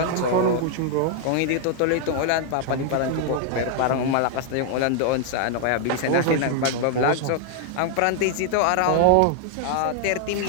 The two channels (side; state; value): both; different; correlation 0.00